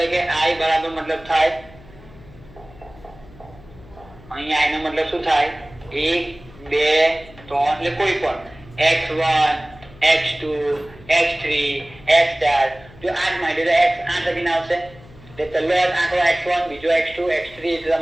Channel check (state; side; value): noise; left; hum, 22 dB below the sound